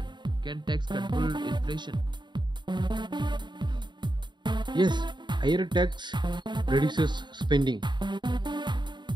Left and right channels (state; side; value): late; left; 0.22 ms